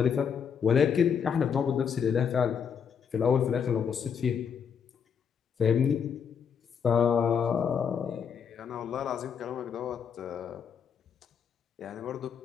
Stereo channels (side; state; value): right; quieter; 7.1 dB